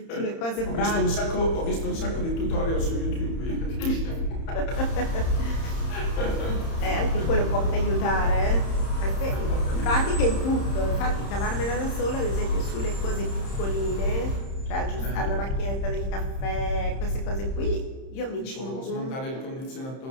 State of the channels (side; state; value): right; late; 30 ms